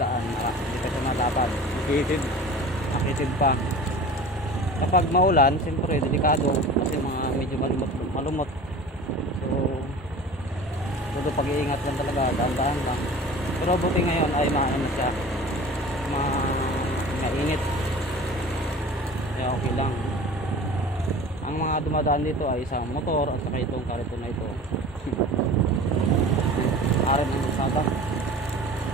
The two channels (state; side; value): normal; both; correlation 0.39